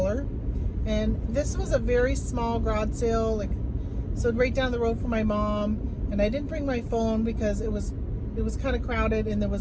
and this was a very small garage sale, so right down the road from my mom. And I didn't bring my phone because it was kind of crowded, and it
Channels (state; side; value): identical; both; correlation 1.00